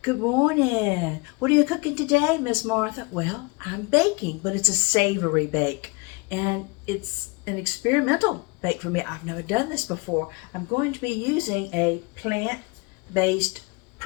Good morning. What are you cooking today, Miss Martha? Well, I'm baking, but it's a savory bake. And it's an experimental bake for me. I've never done this before. I'm going to be using a plant-based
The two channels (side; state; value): right; quieter; 27.6 dB